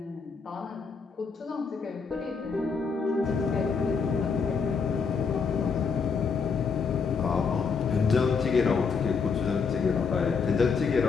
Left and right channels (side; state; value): right; quieter; 5.4 dB